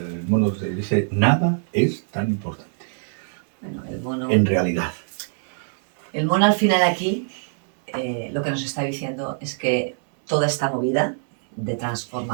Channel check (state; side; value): silent; left; 63 dB below the other